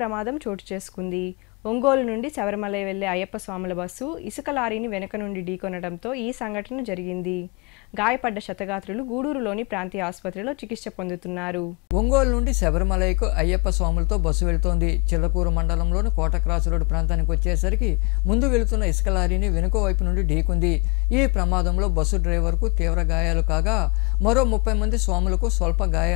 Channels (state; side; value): quieter; right; 31.2 dB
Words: ప్రమాదం చోటు చేసుకుంది. ఒంగోలు నుండి శబరిమల వెళ్లే అయ్యప్ప స్వాముల బస్సు ఇసుక లారీని వెనుక నుండి ఢీకొనడంతో ఈ సంఘటన జరిగింది. గాయపడ్డ క్షతగాత్రులు గూడూరులోని ప్రాంతీయ ఆసుపత్రిలో చికిత్స పొందుతున్నారు. ఒంగోలు నుండి శబరిమలకు అయ్యప్ప స్వాములతో బస్సు వెళుతోంది. చిల్లకూరు మండలంలోని కోట క్రాస్ రోడ్డు ప్రాంతానికి వచ్చేసరికి ముందు వెళుతున్న ఇసుక లారీని వెనుక వైపు నుండి ఢీకొంది. ఈ ప్రమాదంలో బస్సు డ్రైవర్కు తీవ్ర గాయాలు కాగా మరో 30 మంది స్వాములకు స్వల్ప